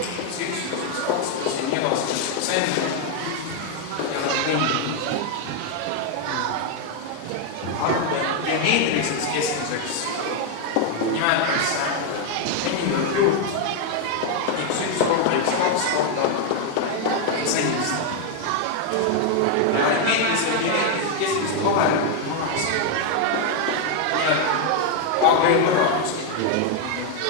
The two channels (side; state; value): both; different; correlation 0.01